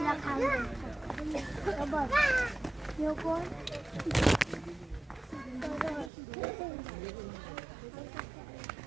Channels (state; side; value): drops out; left; at 6.1 s